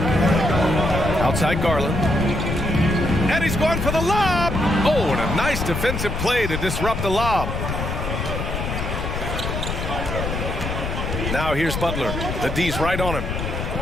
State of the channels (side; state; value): left; noise; rumble, 3 dB below the sound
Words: Outside Garland. And he's going for the lob. Oh, and a nice defensive play to disrupt the lob. Now here's Butler. The D's right on him.